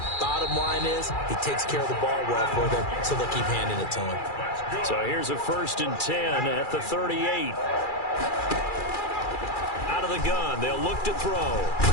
bottom line is he takes care of the ball well for them, so they'll keep handing it to him. So here's a 1st and 10 at the 38. Out of the gun, they'll look to throw.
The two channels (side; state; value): right; late; 2.4 ms